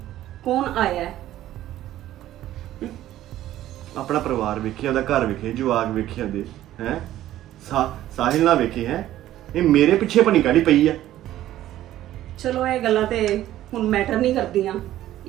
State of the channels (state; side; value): quieter; left; 13.5 dB